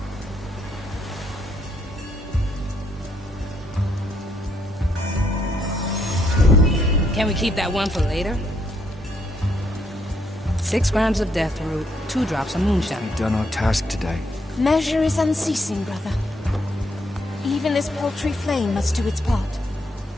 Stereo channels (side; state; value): both; normal; correlation 0.74